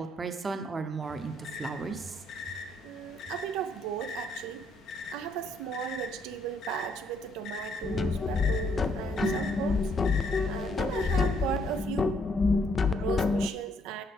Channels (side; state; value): both; normal; correlation 0.69